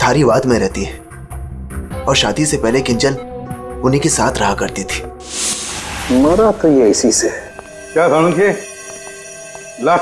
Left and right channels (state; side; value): identical; both; correlation 1.00